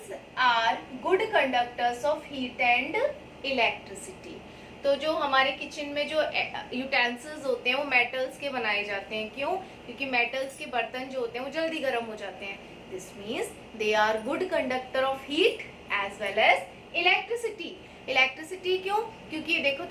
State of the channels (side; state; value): both; identical; correlation 1.00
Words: are good conductors of heat and electricity. तो जो हमारे किचन में जो यूटेंसिल्स होते हैं वो मेटल्स के बनाए जाते हैं। क्यों? क्योंकि मेटल्स के बर्तन जो होते हैं वो जल्दी गर्म हो जाते हैं। This means they are good conductor of heat as well as electricity. Electricity क्यों? क्योंकि देखो